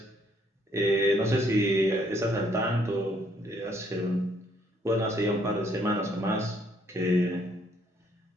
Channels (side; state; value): both; normal; correlation 0.67